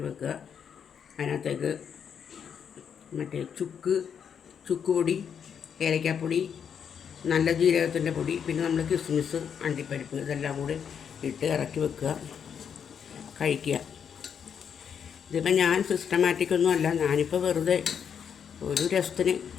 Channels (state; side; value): quieter; right; 7.6 dB